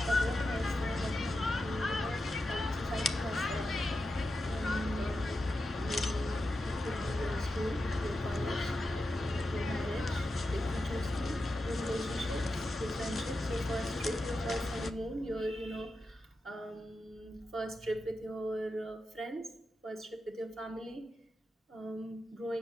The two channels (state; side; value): normal; both; correlation 0.89